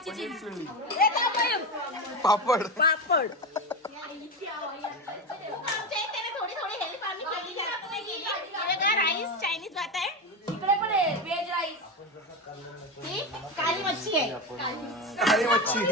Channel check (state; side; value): normal; both; correlation 0.18